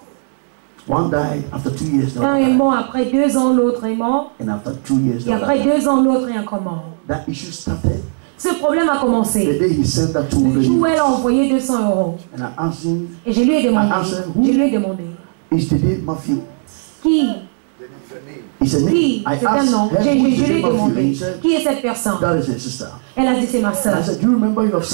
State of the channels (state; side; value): silent; left; 68 dB below the other